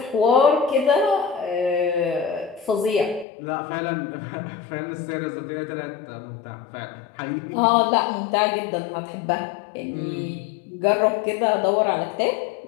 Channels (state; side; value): drops out; right; at 3.2 s